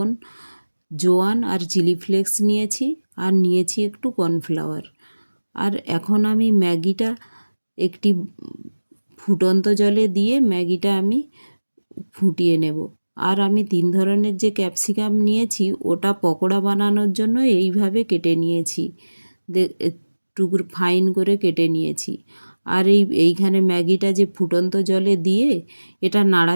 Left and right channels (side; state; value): both; inverted; correlation -1.00